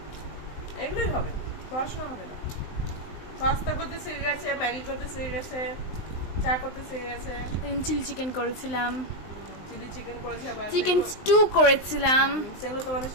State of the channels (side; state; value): right; late; 19 ms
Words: এগুলোই হবে, পড়াশোনা হবে না। পাস্তা করতে শিখে গেছে, ম্যাগি করতে শিখে গেছে, চা করতে শিখে গেছে, চিলি চিকেন করেছিলাম, চিলি চিকেন করেছে, আবার চিকেন স্টু করেছিলাম। সেগুলো তোমাদের